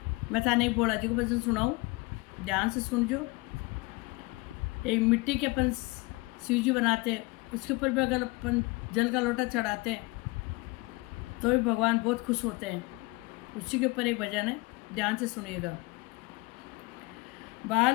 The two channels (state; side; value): quieter; right; 24.9 dB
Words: मैं थाने एक भोला जी को भजन सुनाऊँ, ध्यान से सुनजो। एक मिट्टी के अपन शिव जी बनाते हैं, उसके ऊपर भी अगर अपन जल का लोटा चढ़ाते हैं तो भी भगवान बहुत खुश होते हैं। उसी के ऊपर एक भजन है, ध्यान से सुनिएगा।